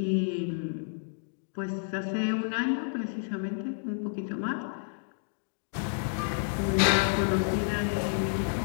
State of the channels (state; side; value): silent; right; digital silence